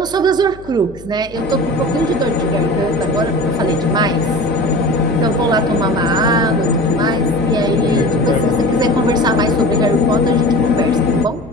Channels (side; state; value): left; noise; hum, 19 dB below the sound